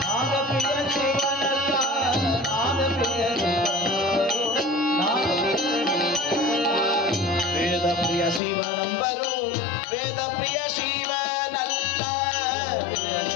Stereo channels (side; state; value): right; drops out; at 8.4 s